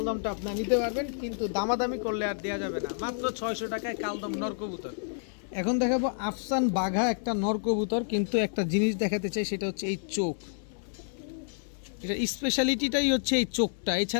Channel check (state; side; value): silent; right; 58 dB below the other